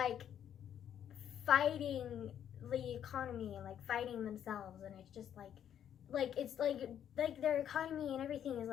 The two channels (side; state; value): right; quieter; 9.7 dB